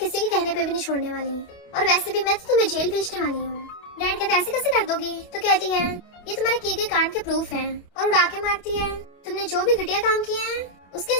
के कहने पे भी नहीं छोड़ने वाली, और वैसे भी मैं तो तुम्हें जेल भेजने वाली हूँ। डैड कहते ऐसे कैसे कर दोगी? तो कहती है ये तुम्हारे किए गए कांड के प्रूफ हैं, और उड़ा के मारती है तुमने जो भी घटिया काम किया है उसके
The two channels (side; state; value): right; late; 28 ms